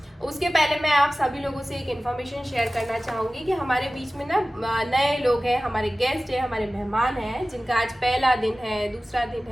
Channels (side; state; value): both; normal; correlation 0.96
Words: उसके पहले मैं आप सभी लोगों से एक इन्फॉर्मेशन शेयर करना चाहूँगी कि हमारे बीच में ना नए लोग हैं, हमारे गेस्ट हैं, हमारे मेहमान हैं जिनका आज पहला दिन है, दूसरा दिन